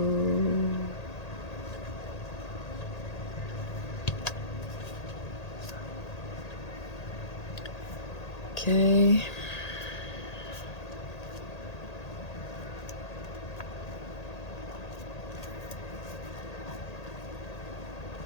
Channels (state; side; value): late; right; 1.8 ms